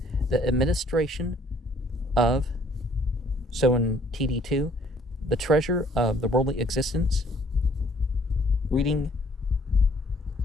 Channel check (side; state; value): both; normal; correlation 0.60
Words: The administration of, so in TD2, the treasure of the worldly existence. Reading,